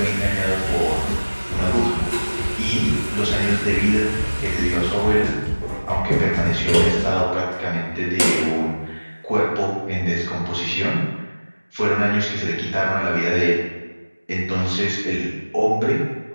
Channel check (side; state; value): both; inverted; correlation -1.00